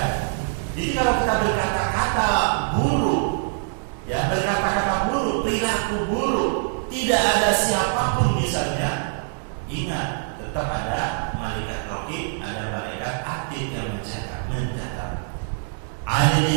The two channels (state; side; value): silent; left; 60 dB below the other